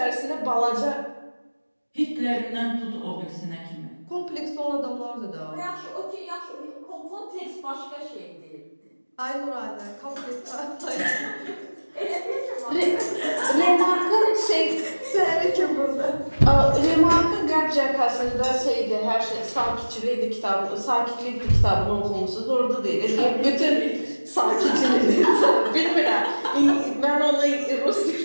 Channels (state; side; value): inverted; both; correlation -1.00